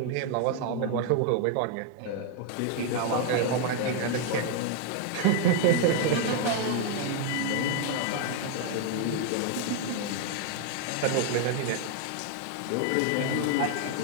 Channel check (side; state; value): both; different; correlation 0.00